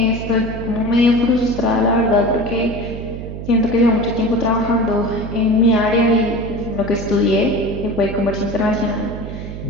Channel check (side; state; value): right; noise; hum, 9 dB below the sound